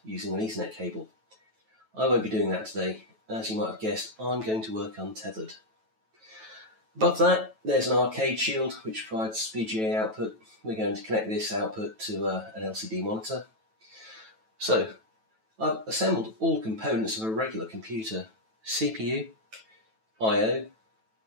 using an Ethernet cable. I won't be doing that today. As you might have guessed, I'm going to work untethered. Above that, there's an arcade shield which provides VGA output. We're going to connect this output to an LCD monitor. So, I've assembled all components of a regular computer: CPU, I/O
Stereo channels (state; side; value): late; left; 9.1 ms